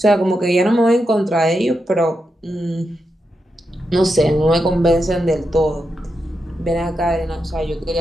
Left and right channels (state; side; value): normal; both; correlation 0.86